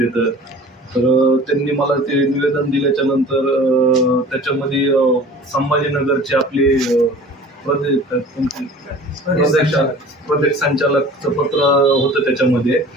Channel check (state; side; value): normal; both; correlation 0.44